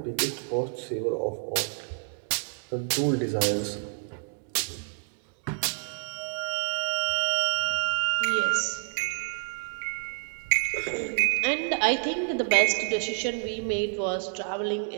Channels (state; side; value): silent; left; 59 dB below the other